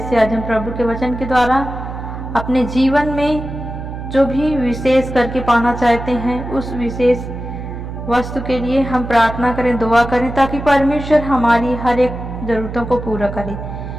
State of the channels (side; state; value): right; noise; hum, 8 dB below the sound